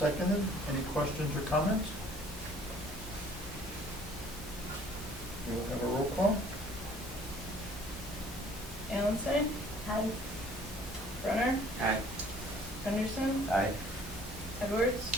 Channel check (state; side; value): normal; both; correlation 0.55